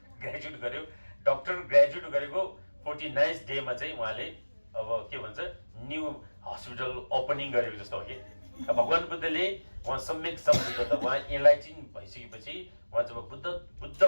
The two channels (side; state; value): both; inverted; correlation -1.00